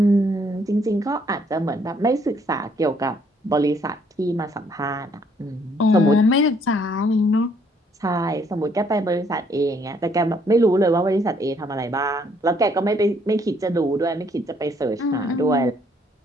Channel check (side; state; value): both; normal; correlation 0.66